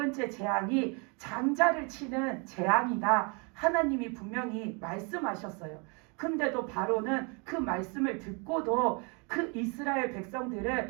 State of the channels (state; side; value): quieter; left; 33.3 dB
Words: 재앙이 장자를 치는 재앙이다. 하나님이 분명히 말씀하셨어요. 근데도 바로는 그 말씀을 듣고도 그 이스라엘